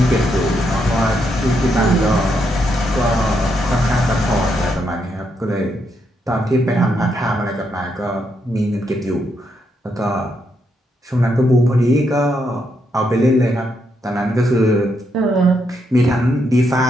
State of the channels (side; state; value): both; normal; correlation 0.78